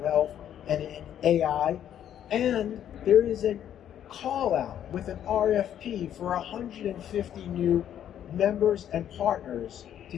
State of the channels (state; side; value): quieter; right; 10.2 dB